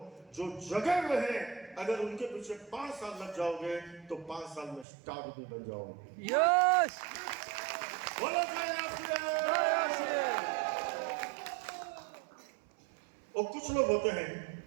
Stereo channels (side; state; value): left; drops out; at 4.9 s